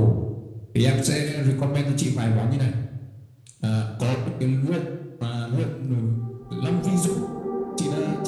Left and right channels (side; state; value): both; identical; correlation 1.00